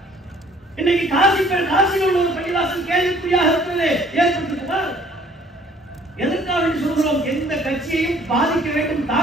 இன்னைக்கு காசியில் உள்ள ஒரு பள்ளிவாசல் கேள்விக்குறியாக இருக்கிறது ஏற்பட்டிருக்குமா? எதற்காக சொல்கிறோம்? எந்த கட்சியையும் பாதிக்க வேண்டும்,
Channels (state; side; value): normal; both; correlation 0.57